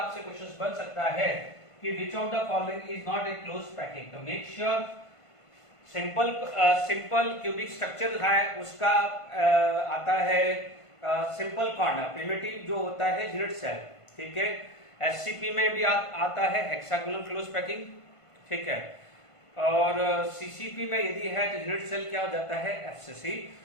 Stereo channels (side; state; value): right; late; 1.5 ms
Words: क्वेश्चंस बन सकता है कि which of the following is not a close packing. तो make sure simple cubic structure है उसका आता है सिंपल कॉर्नर, प्रिमिटिव जो होता है यूनिट सेल, ठीक है। एससीपी में भी आता है हेक्सागोनल क्लोज पैकिंग, ठीक है। और सीसीपी में यदि है तो यूनिट सेल क्या हो जाता है, FCC.